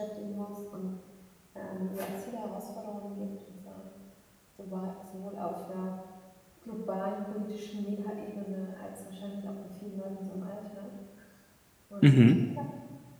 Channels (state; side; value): identical; both; correlation 1.00